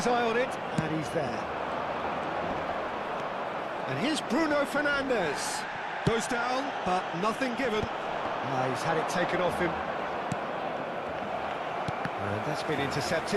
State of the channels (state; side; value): identical; both; correlation 1.00